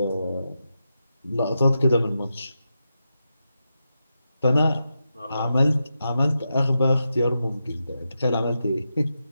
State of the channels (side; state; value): both; inverted; correlation -0.88